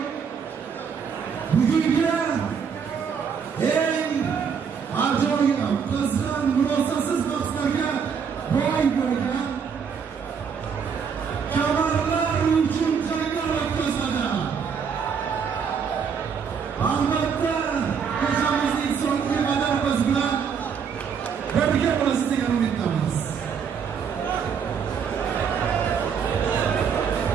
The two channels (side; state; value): left; quieter; 6.6 dB